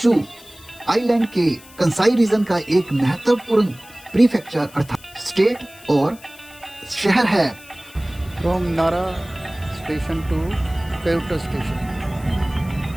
आइलैंड के कंसाई रीजन का एक महत्वपूर्ण प्रीफेक्चर अर्थात स्टेट और शहर है। From Nara station to Kyoto station.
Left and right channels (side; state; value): left; noise; hiss, 22 dB below the sound